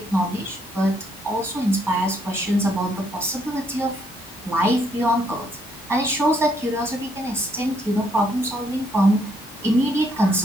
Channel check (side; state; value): both; normal; correlation 0.71